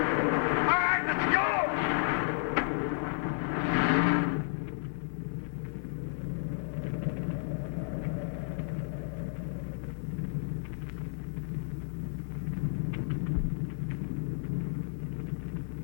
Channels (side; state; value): right; silent; digital silence